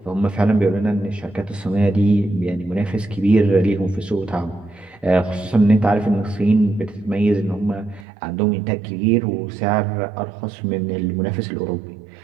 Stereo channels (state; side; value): drops out; left; at 8.1 s